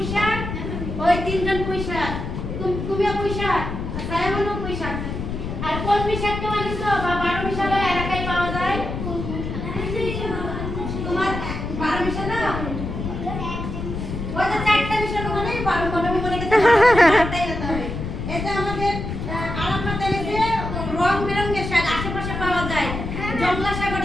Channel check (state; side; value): noise; left; rumble, 5 dB below the sound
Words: শাক? ওই তিনজন পুঁই শাক। তুমিও পুঁই শাক, সায়ামনও পুঁই শাক। আর কলমি শাক কেউ এনেছো? বা 12 মিশালো এলাকায় পাওয়া যায়? তোমার 12 মিশালো? ওই যে 4টা মিশালো মানে 12 আমি মনে করতে চারটাই হতে হবে। এটা আমাদের আরাফাত এনেছে রং বেরঙের শাক, আশেপাশে পাওয়া যায়। জংলা শাক,